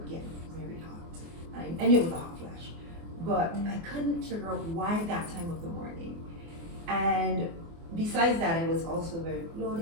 get very hot. I knew it was a hot flash, but I couldn't figure out why that time of the morning. And besides that, I was also very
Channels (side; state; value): left; late; 24 ms